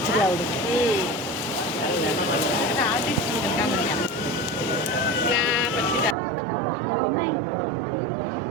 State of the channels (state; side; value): drops out; left; at 6.2 s